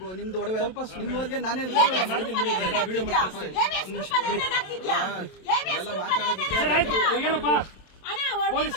ನಿಮ್ದು ಒಡವೆ ನಿಮ್ಮವರಿಗೆ ನಾನೇ ಮಾಡ್ತೀನಿ ಬಿಡಿ. ಎಲ್ಲ ಮಾತಾಡೋದಕ್ಕೆ ಪೊಲೀಸ್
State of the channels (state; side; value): late; right; 27 ms